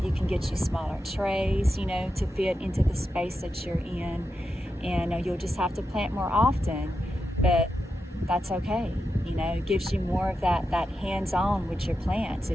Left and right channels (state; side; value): normal; both; correlation 0.88